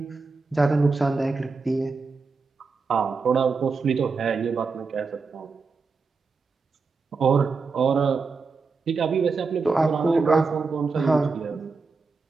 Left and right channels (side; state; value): left; quieter; 4.5 dB